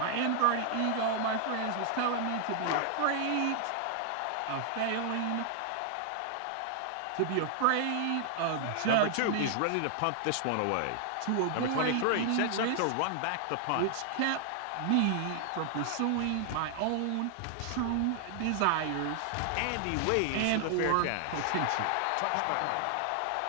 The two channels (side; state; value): both; different; correlation 0.00